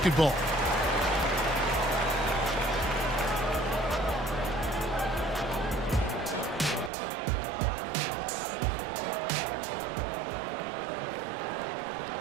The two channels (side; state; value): left; drops out; at 6.9 s